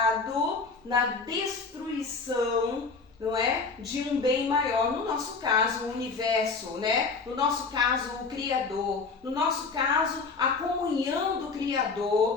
na destruição, não é, de um bem maior, no nosso caso o universo, né? No nosso caso o Criador, no nosso caso a comunhão do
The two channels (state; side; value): quieter; right; 4.4 dB